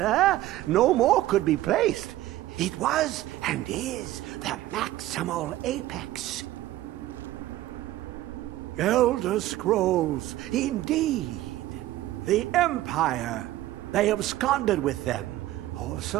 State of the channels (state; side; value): quieter; left; 15.2 dB